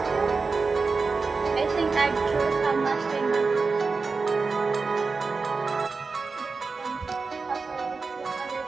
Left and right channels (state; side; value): quieter; left; 4.3 dB